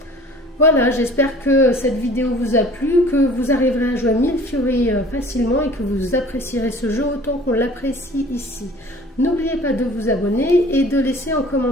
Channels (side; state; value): both; normal; correlation 0.48